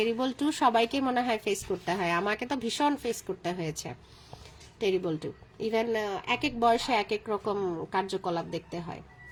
2 সবাইকে মনে হয় ফেস করতে হয়, আমাকে তো ভীষণ ফেস করতে হয়েছে টেরিবল 2। ইভেন এক এক বয়সে এক এক রকম কার্যকলাপ দেখতে হয়।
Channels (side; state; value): both; identical; correlation 1.00